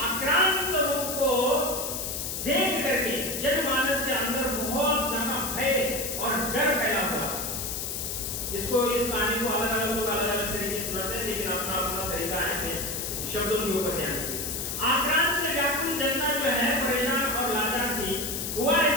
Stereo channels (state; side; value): noise; left; hiss, 4 dB below the sound